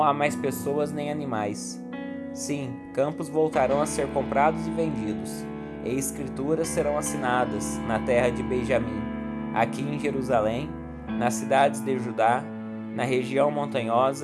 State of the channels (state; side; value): identical; both; correlation 1.00